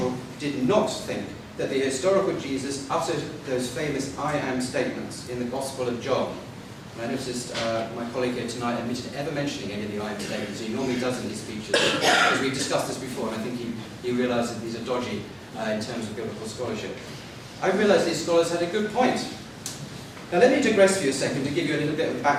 did not think that the historical Jesus uttered those famous I am statements in the Gospel of John. And I noticed my colleague here tonight admitted ever mentioning any of the I am statements. He normally does in his speeches, because we've discussed this before, and I think he realised that these are dodgy in terms of biblical scholarship. I realised these scholars had a good point. Now let me digress for you a second to give you a little bit of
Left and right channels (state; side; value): identical; both; correlation 1.00